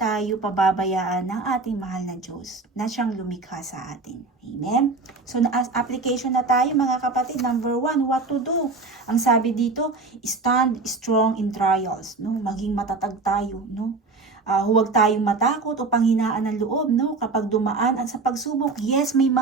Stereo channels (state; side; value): quieter; left; 3.9 dB